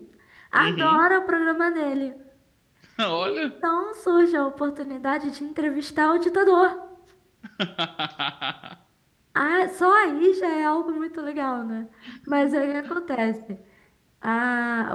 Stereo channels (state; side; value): identical; both; correlation 1.00